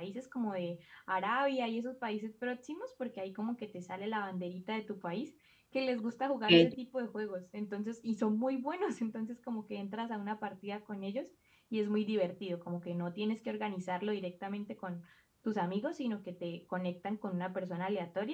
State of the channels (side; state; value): both; identical; correlation 1.00